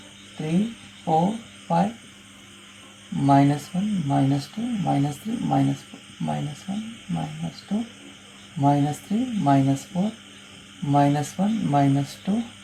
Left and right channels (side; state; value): both; identical; correlation 1.00